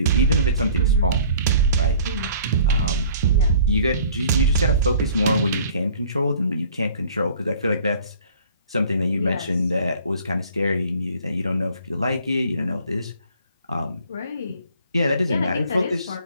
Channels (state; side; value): inverted; both; correlation -0.52